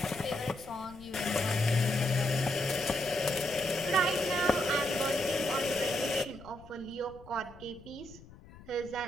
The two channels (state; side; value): noise; left; rumble, 20 dB below the sound